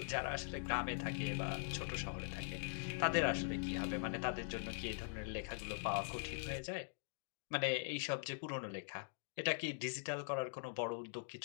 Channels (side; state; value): right; silent; digital silence